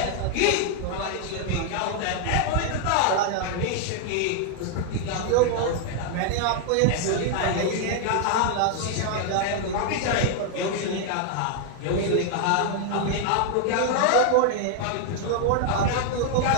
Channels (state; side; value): different; both; correlation 0.00